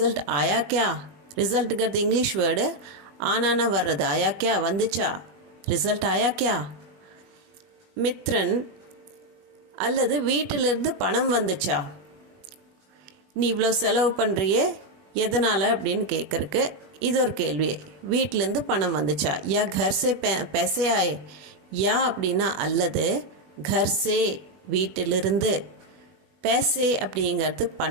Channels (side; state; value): left; late; 21 ms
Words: ஆயா கியா? ரிசல்ட்டுங்கிறது இங்கிலீஷ் வேர்டு, ஆனானா வர்றது, ஆயா கியா வந்துச்சா, ரிசல்ட் ஆயா கியா? மித்ரன், அல்லது வீட்டிலிருந்து பணம் வந்துச்சா? நீ இவ்வளோ செலவு பண்ணுறியே எதனால் அப்படின்னு கேட்குறக்கு இது ஒரு கேள்வி. வீட்டிலேருந்து பணம் வந்துச்சா? யா घर से पैसे आए. யா அப்படின்னா அல்லது, घर से வீட்டிலிருந்து, पैसे அப்படிங்கிறது